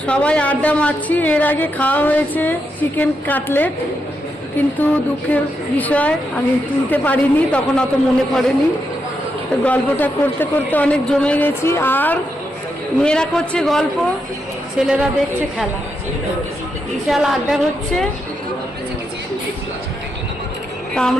সবাই আড্ডা মারছি। এর আগে খাওয়া হয়েছে চিকেন কাটলেট, কিন্তু দুঃখের বিষয় আমি তুলতে পারিনি, তখন অত মনে পড়েনি। তো গল্পটা করতে করতে অনেক জমে গেছি। আর মেয়েরা করছে গল্প, ছেলেরা দেখছে খেলা, বিশাল আড্ডা হচ্ছে। তা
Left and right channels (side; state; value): both; normal; correlation 0.83